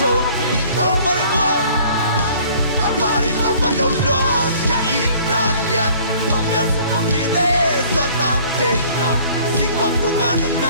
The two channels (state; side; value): inverted; both; correlation -0.54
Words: Kalvari mo patong long kya ina ya không nhớ sự không biết thế so tam thế nào xin con tung ăn